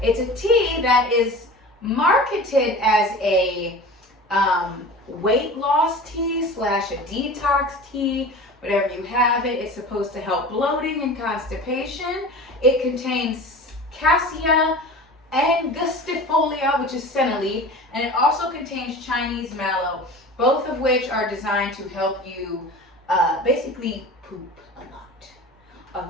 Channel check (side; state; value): both; normal; correlation 0.36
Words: It's a tea that is marketed as a weight loss tea slash a detox tea, whatever you have it. It's supposed to help bloating and constipation. It contains cassia angustifolia, which is senna leaf, and it also contains Chinese mallow, both of which are designed to help you basically poop a lot.